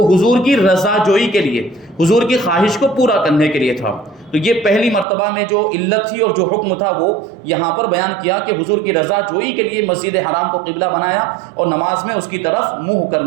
حضور کی رضا جوئی کے لیے، حضور کی خواہش کو پورا کرنے کے لیے تھا۔ تو یہ پہلی مرتبہ میں جو علت تھی اور جو حکم تھا وہ یہاں پر بیان کیا کہ حضور کی رضا جوئی کے لیے مسجد حرام کو قبلہ بنایا اور نماز میں اس کی طرف منہ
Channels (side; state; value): left; drops out; at 5.1 s